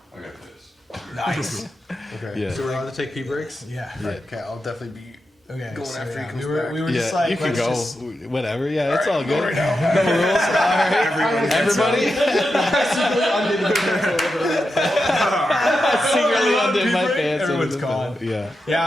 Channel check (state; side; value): normal; both; correlation 0.88